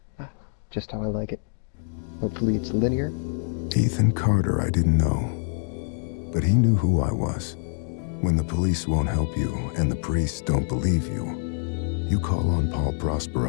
Ah, just how I like it. Hopefully it's linear. Ethan Carter I didn't know, but he knew who I was. When the police won't help you and the priests don't believe you, you call on Paul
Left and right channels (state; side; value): silent; right; digital silence